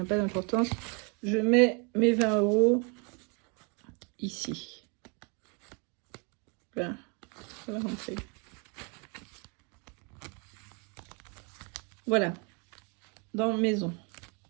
pas d'importance. Je mets mes 20 € ici. Là, ça va rentrer. Voilà, dans maison.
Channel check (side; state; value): left; quieter; 33.9 dB